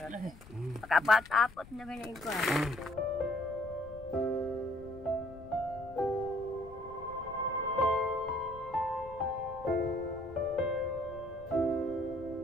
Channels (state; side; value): noise; left; rumble, 19 dB below the sound